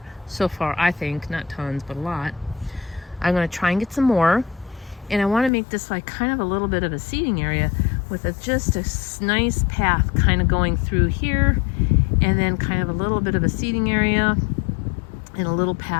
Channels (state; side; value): drops out; right; at 5.5 s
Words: so far. I think not tons, but a lot. I'm going to try and get some more, and I want to make this like kind of a little bit of a seating area with just a nice path kind of going through here, and then kind of a little bit of a seating area and a little